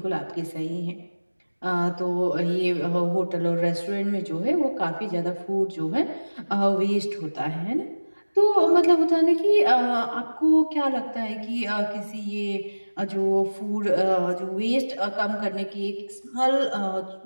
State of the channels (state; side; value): inverted; both; correlation -1.00